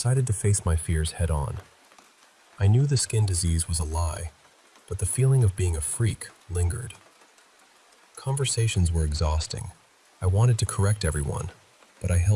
to face my fears head-on. I knew the skin disease was a lie, but the feeling of being a freak lingered. Conversations were exhausting. I wanted to correct everyone, but I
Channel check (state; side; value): identical; both; correlation 1.00